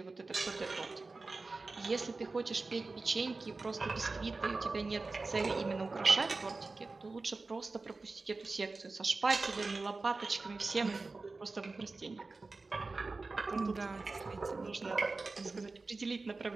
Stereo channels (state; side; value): quieter; left; 3.6 dB